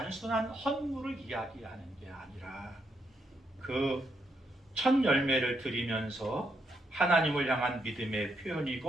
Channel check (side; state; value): both; normal; correlation 0.79